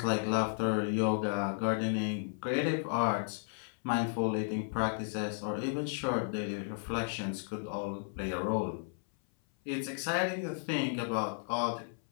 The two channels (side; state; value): right; silent; 55 dB below the other